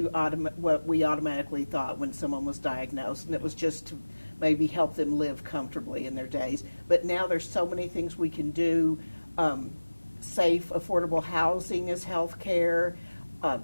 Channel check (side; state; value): both; inverted; correlation -1.00